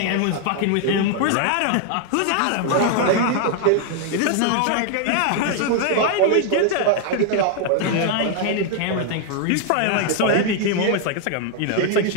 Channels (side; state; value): both; different; correlation 0.00